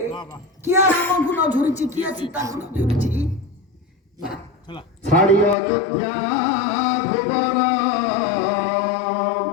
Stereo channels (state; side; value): drops out; right; at 5.6 s